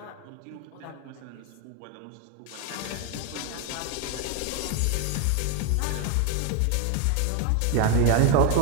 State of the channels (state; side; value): different; both; correlation 0.01